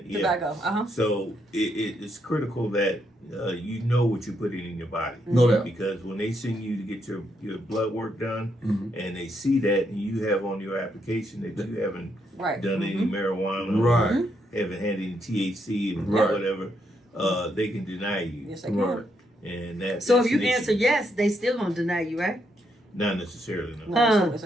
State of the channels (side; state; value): both; normal; correlation 0.77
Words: tobacco. So it's critical that you know what you're putting in your body. No doubt. Because when they send you to get your blood work done, and they see that and you have on your application that you haven't done any marijuana, Right. haven't had any THC and Right. whatever, they can deny you. Yes, they can. Right. And that. So that's if you an issue. answer yes, they still gonna deny you, right? Not necessarily, no. No,